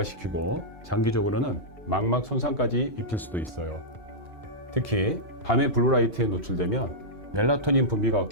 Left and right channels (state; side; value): normal; both; correlation -0.10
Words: 장기적으로는 망막 손상까지 입힐 수도 있어요. 특히 밤에 블루라이트에 노출되면 멜라토닌 분비가